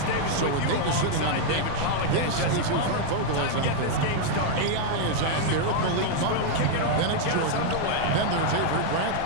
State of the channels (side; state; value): both; different; correlation 0.00